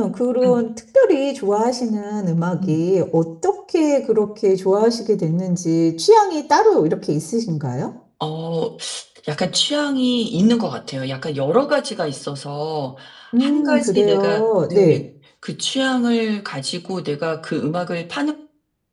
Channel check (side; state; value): both; identical; correlation 1.00